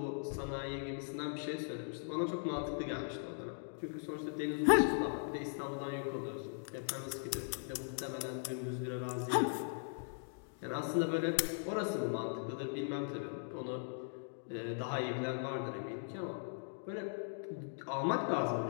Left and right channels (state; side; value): silent; right; digital silence